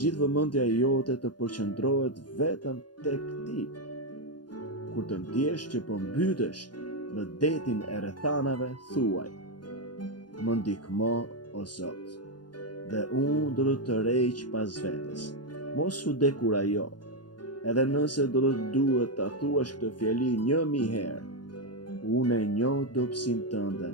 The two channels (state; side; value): late; right; 0.70 ms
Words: vëmendja jote të përqendrohet vetëm tek ti. Kur të ndjesh që po mbytesh në detin e rrethanave, thuaj: më ndihmo o Zot, dhe unë do të të rreq pas vetes. Mos u dekurajo, edhe nëse do të duhet ta thuash këtë fjali 1000 herë. Unë e njoh dobësinë tënde